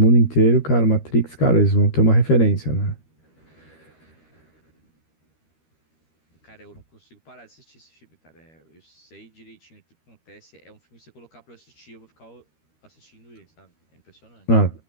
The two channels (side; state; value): right; late; 13 ms